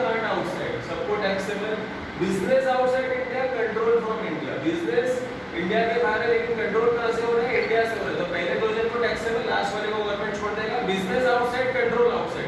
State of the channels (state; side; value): identical; both; correlation 1.00